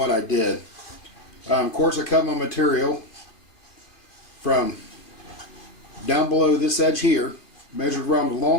I did. Of course, I cut my material from down below this edge here, measured around the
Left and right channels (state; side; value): late; right; 2.4 ms